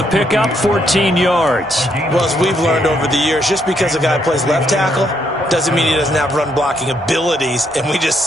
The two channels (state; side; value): normal; both; correlation 0.74